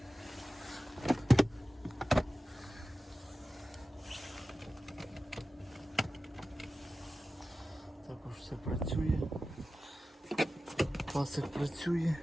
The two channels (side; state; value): both; normal; correlation 0.94